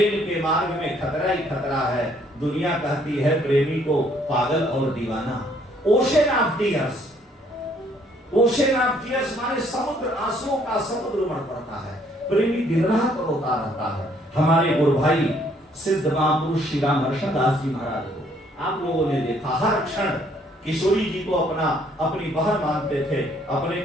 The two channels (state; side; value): normal; both; correlation 0.65